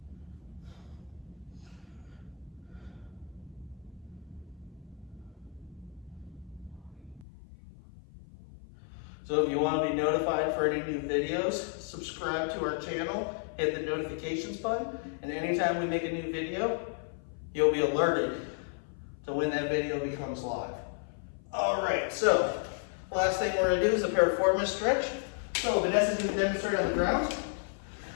So if you want to be notified for any new videos, subscribe to our channel, hit the notifications button, and anytime we make a new video, you'll be alerted to when that video becomes live. All right, so last thing we're gonna do is a piriformis stretch. So Vanessa's gonna demonstrate on the ground.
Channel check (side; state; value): right; drops out; at 7.2 s